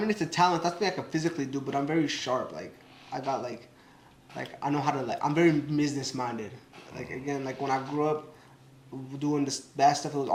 talent. That's something I can physically do, but I'm very sharp. Like I got like I know how to I'm very business minded. Like again, like when I grew up doing this bad stuff, it was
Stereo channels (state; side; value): identical; both; correlation 1.00